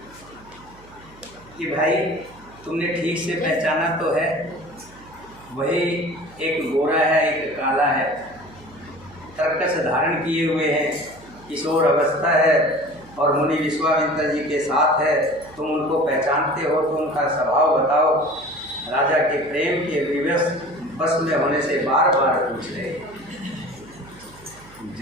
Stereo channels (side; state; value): right; noise; hum, 24 dB below the sound